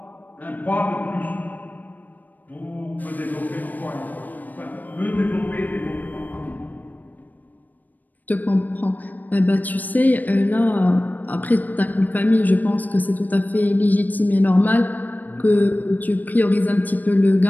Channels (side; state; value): right; late; 0.084 ms